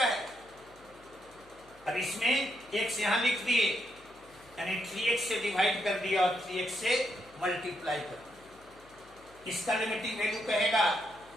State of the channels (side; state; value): left; noise; hum, 27 dB below the sound